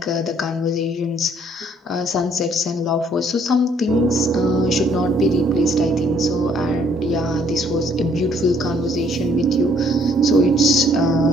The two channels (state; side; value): normal; both; correlation 0.64